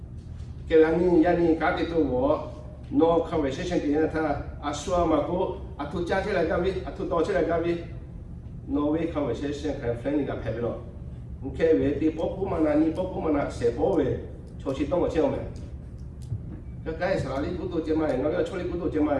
Kalau ni kat itu no conversation dia ta asua maku atu cakap lagi kami, atu tahu lagi kami. No way conversation kan friend ni kat happy lo. Okay, we di popu mana ni popu mana sepo we. Cuci tong macam mana? Cái sao đi cũng tôi chơi mai, nó cái chỗ đi cũng tôi chơi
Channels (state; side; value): identical; both; correlation 1.00